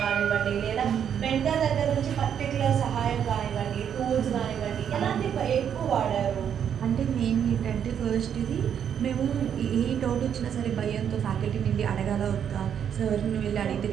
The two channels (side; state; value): left; quieter; 8.5 dB